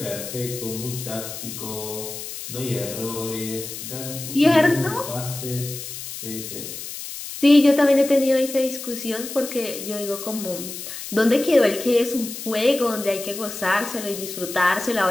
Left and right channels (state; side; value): noise; left; hiss, 9 dB below the sound